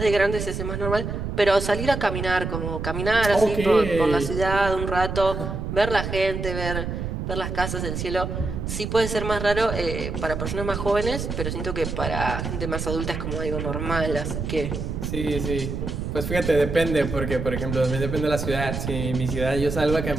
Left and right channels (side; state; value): right; noise; rumble, 4 dB below the sound